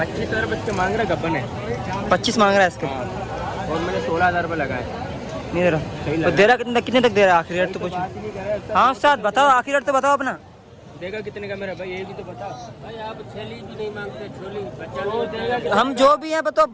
रुपये इसके मांग रहे, गब्बन है। 25 मांग रहा है इसके। और मैंने 16,000 रुपये लगाए। नहीं दे रहा। तो दे रहा कितने तक दे रहा है? आखिरी रेट तो कुछ। हाँ उस्ताद बताओ, आखिरी रेट तो बताओ अपना। देगा कितने का मेरा भाई, ये भी तो बता भाई। आप छेली भी नहीं मांगते, छोली बच्चा नहीं देगा। हम जो भी है बताओ,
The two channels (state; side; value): identical; both; correlation 1.00